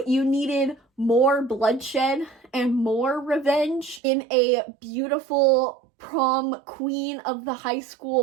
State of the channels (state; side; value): drops out; left; at 4.0 s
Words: you needed more bloodshed and more revenge in a beautiful prom queen of the high